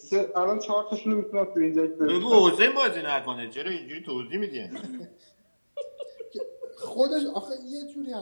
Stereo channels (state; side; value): inverted; both; correlation -1.00